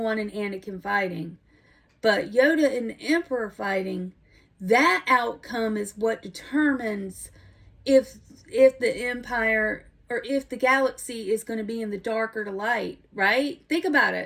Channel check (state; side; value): identical; both; correlation 1.00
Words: and Anakin fighting. But Yoda and the Emperor fighting, that outcome is what determines if the Empire, or if the galaxy is going to be in the dark or the light, right? Think about